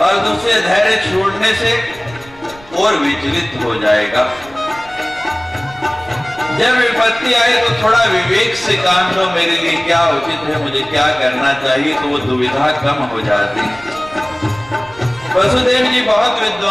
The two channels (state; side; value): noise; right; rumble, 22 dB below the sound